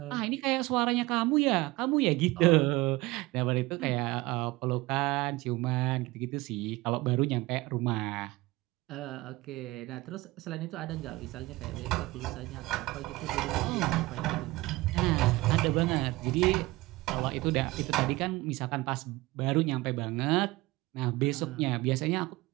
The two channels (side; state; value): left; quieter; 20.4 dB